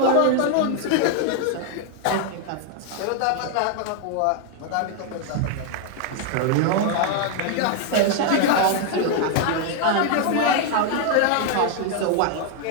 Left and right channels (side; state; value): both; different; correlation 0.00